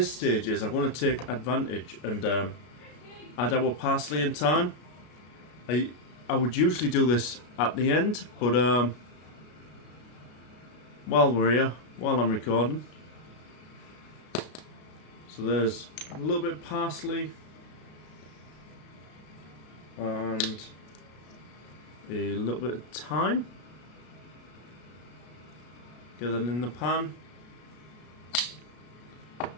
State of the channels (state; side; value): late; right; 33 ms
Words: stage is I'm going to take advantage and add our parsley and thyme. I would usually do this at the end, but while we're here, while I'm recording. So there's a little bit of parsley and a little bit of thyme. Get that in the pan,